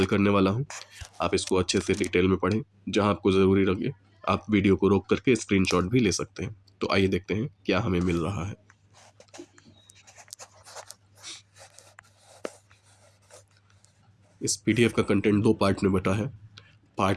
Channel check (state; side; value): identical; both; correlation 1.00